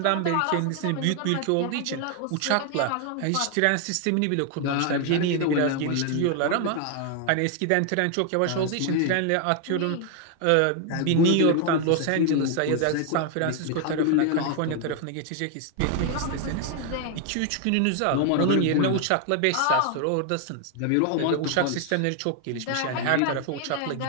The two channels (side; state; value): both; different; correlation 0.00